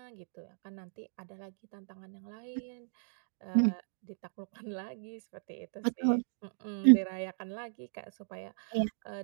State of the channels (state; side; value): silent; left; digital silence